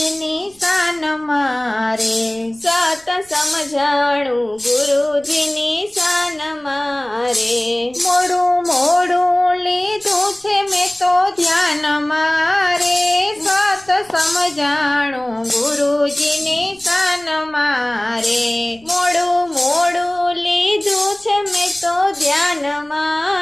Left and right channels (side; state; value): right; noise; rumble, 28 dB below the sound